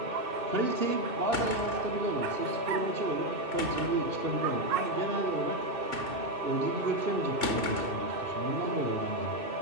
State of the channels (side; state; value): left; late; 2.6 ms